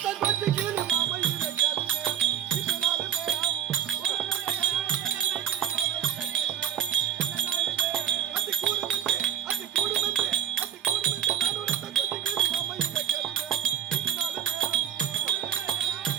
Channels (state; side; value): quieter; left; 9.9 dB